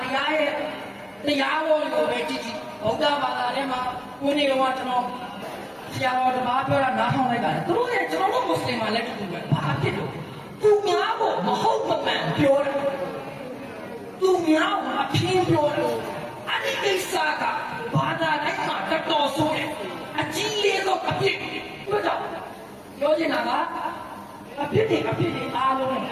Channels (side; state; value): both; identical; correlation 1.00